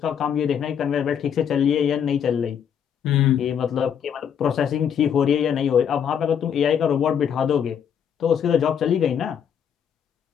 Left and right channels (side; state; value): right; quieter; 8.2 dB